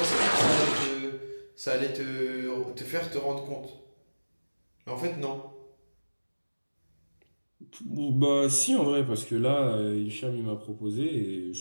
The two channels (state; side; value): inverted; both; correlation -1.00